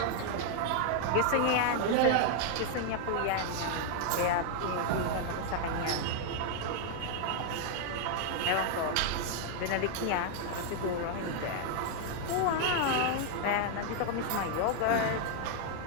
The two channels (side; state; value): both; different; correlation 0.00